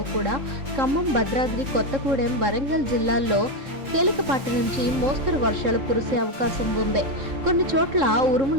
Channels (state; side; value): late; left; 3.7 ms